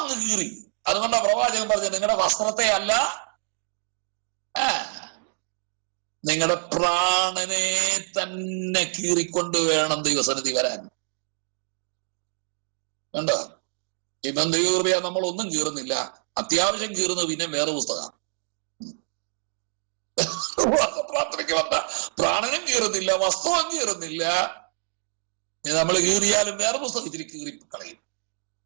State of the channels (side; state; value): left; silent; digital silence